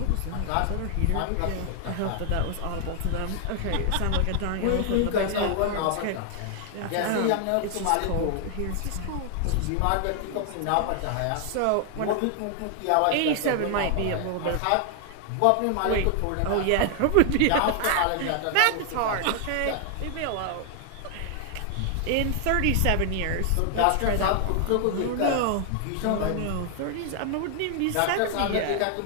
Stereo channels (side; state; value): both; different; correlation 0.00